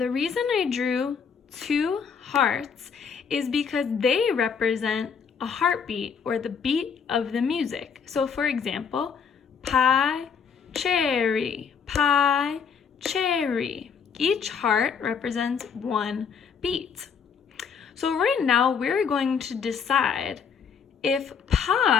reason I drew 2 hearts is because they represent a heartbeat or the beat of the music. So, for example, pie, cherry, pie, cherry. Each heart represents 1 beat. So right now we're going to decide if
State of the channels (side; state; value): right; quieter; 6.5 dB